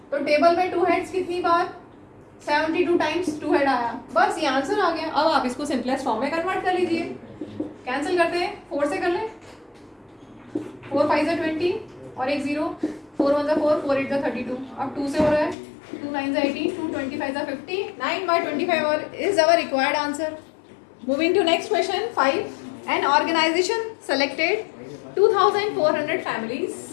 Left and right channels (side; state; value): right; drops out; at 15.6 s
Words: तो टेबल में 2 हेड्स कितनी बार? 72 टाइम्स 2 हेड आया। बस ये आंसर आ गया। अब आप इसको सिंपलेस्ट फॉर्म में कन्वर्ट कर लीजिए। कैंसिल करते हैं, 4 से कर लें। 4 5 20 और एक 0, 4 1 4, 4 8 32। अब 2 से हो रहा है, 2 9 18, 2 25 50, 9/25 और is our required answer. Moving to next question 5। An organisation selected 2400 families.